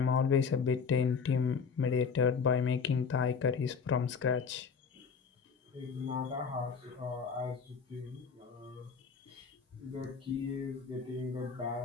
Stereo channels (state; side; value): quieter; right; 5.8 dB